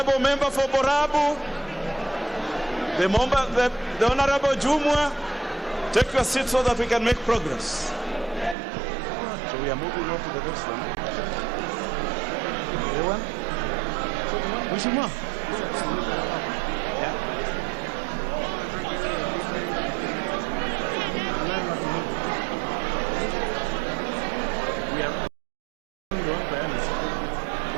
member for Borabu, the Honorable Jumwa, take your seat so that we can make progress. So we are moving on to the next one. The one?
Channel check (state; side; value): drops out; left; at 8.6 s